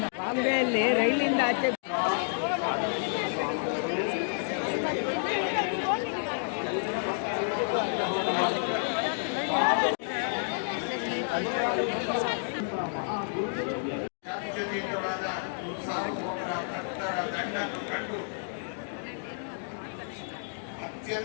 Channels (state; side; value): silent; right; digital silence